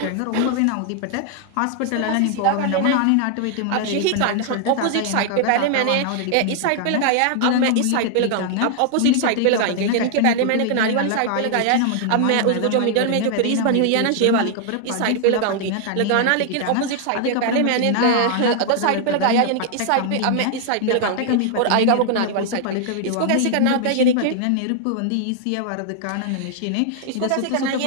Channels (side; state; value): both; different; correlation 0.00